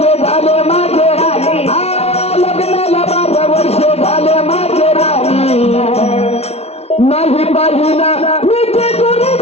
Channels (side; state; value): right; late; 0.31 ms